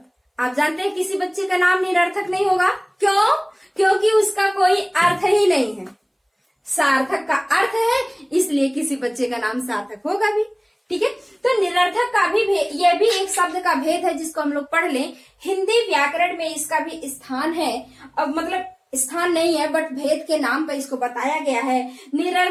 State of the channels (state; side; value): identical; both; correlation 1.00